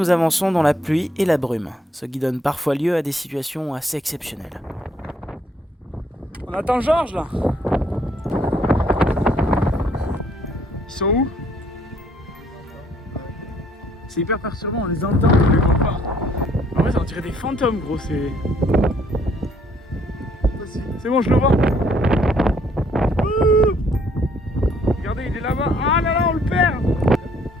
avançons dans la pluie et la brume, ce qui donne parfois lieu à des situations assez exceptionnelles. On attend Georges là. Ils sont où? C'est hyper perturbant, on les entend, on les voit pas. En vrai, ça on dirait des fantômes, gros, c'est... C'est bon, je le vois. Ouh, regardez, il est là-bas. Ah là là, on le perd.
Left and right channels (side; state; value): both; normal; correlation 0.65